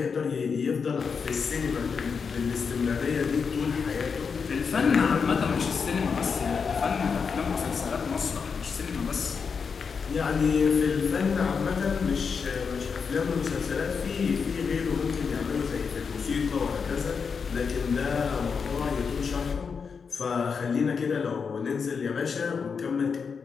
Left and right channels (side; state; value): right; quieter; 5.8 dB